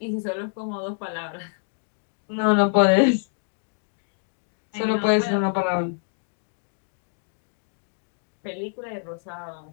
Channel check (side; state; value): right; silent; digital silence